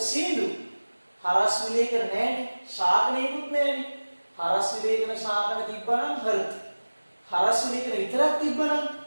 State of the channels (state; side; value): inverted; both; correlation -1.00